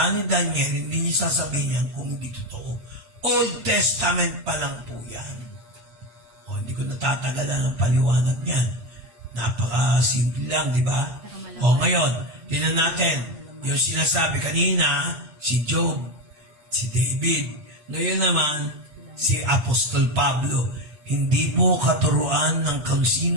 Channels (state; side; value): late; left; 7.6 ms